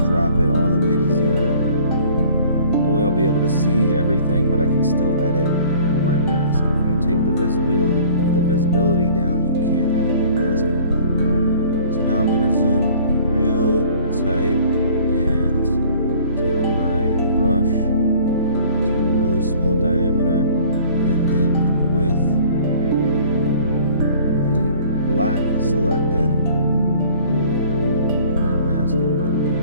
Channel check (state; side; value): inverted; both; correlation -0.51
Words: drop it all the way to 0. That way I'll be able to see everything, but I can still edit my mask. If you take the visibility down, you can't edit your mask anymore. So now I'm going to zoom real tight and take my brush to a really small diameter, and then with the black selected, I'm going to mask in my